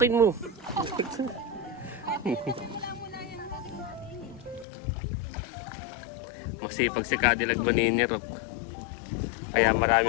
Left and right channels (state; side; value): drops out; right; at 4.7 s